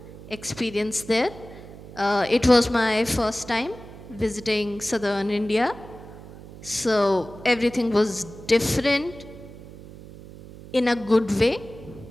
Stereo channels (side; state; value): right; noise; hum, 16 dB below the sound